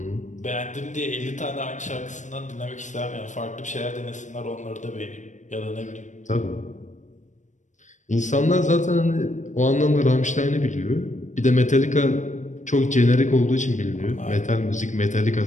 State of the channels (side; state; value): right; late; 0.35 ms